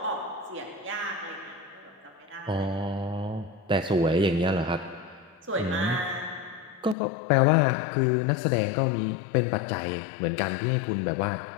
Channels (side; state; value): right; drops out; at 7.0 s